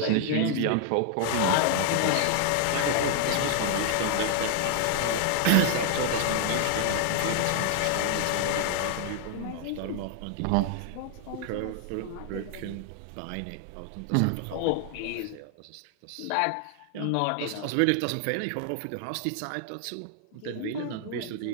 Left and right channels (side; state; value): both; different; correlation 0.00